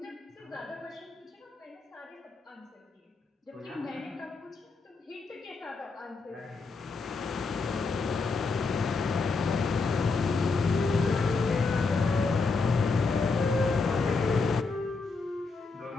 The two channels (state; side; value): quieter; right; 4.2 dB